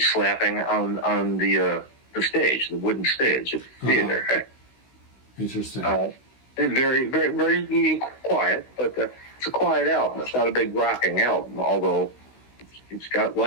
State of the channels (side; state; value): right; late; 16 ms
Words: slapping on the stage, the wooden stage of the theater. Uh-huh. Interesting. Very, very, very quiet, but it's a quiet album. It's not a big rocking album, although it's got